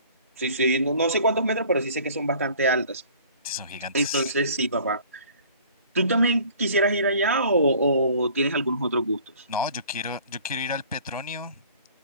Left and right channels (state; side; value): inverted; both; correlation -0.50